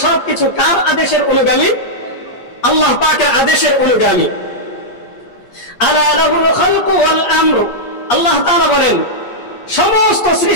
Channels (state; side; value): late; right; 8.4 ms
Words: সবকিছু কার আদেশের অনুগামী? আল্লাহ পাকের আদেশের অনুগামী। আলা লাহুল খালকু ওয়াল আমর, আল্লাহ তাআলা বলেন সমস্ত